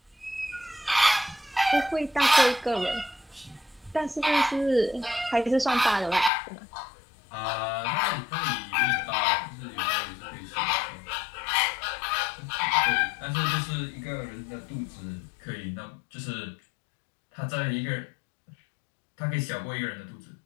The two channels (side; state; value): right; drops out; at 6.3 s